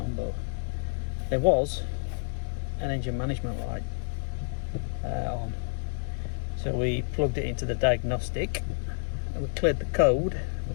but there was an engine management light on. So we plugged it into the diagnostic and we cleared the code,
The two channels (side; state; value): right; silent; digital silence